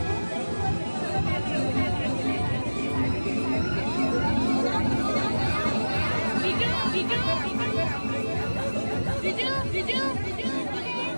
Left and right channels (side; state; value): both; inverted; correlation -1.00